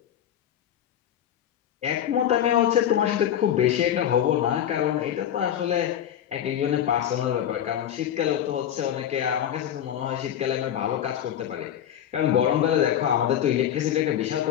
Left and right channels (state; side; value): quieter; right; 10.3 dB